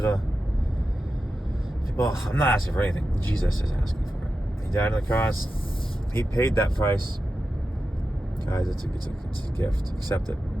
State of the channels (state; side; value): normal; both; correlation 0.91